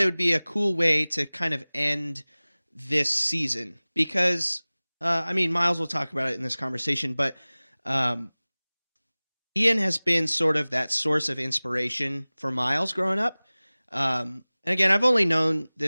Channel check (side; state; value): both; inverted; correlation -1.00